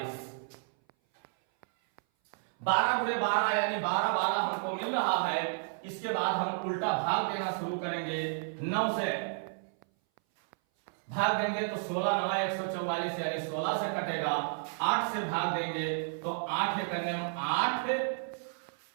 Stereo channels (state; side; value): silent; left; 57 dB below the other